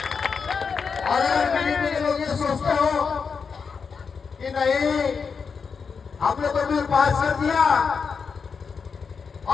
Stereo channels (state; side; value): quieter; right; 5.7 dB